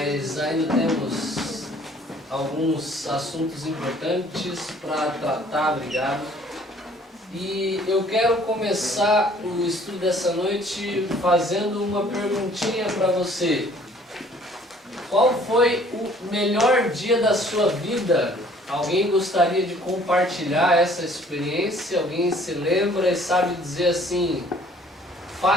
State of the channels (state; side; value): normal; both; correlation 0.56